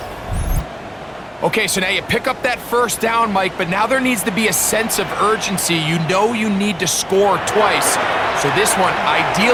Okay, so now you pick up that first down, Mike, but now there needs to be a sense of urgency. You know you need to score twice. So this one,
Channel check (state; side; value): identical; both; correlation 1.00